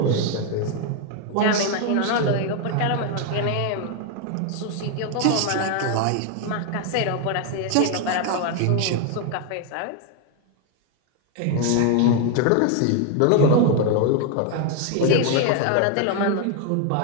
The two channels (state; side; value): different; both; correlation 0.01